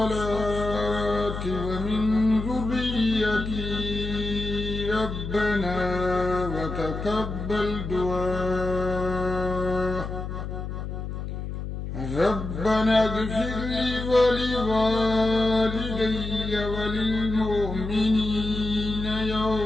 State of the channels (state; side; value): noise; left; hum, 6 dB below the sound